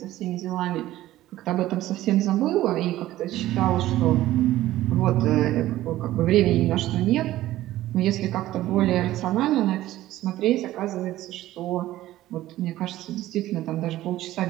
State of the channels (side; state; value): left; quieter; 15.0 dB